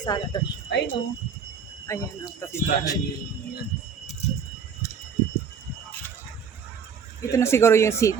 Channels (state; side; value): quieter; left; 6.3 dB